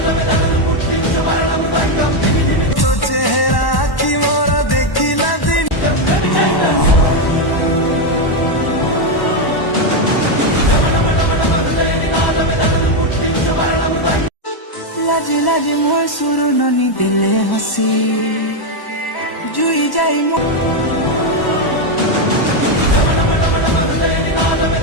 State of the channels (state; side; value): late; right; 1.1 ms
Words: तो चेहरा की मोरा देखिला दिन लाजे लाजे मोर सुरु ननी दिले हसी जुई जाई मोर